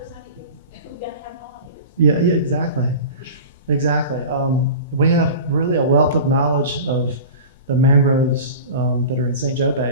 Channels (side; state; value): both; inverted; correlation -0.35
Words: Yeah, exactly. We have really a wealth of knowledge of the mangroves that are in St. Joe